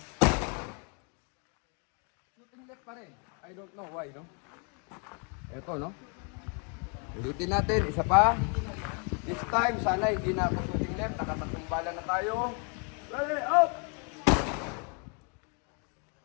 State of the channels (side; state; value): right; quieter; 37.8 dB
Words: Left pa rin. I don't know why, no? Ito, no? Ulitin natin. Isa pa. This time, sana hindi na ako shooting left. Nakatatlong bala na tayo. Ready, up!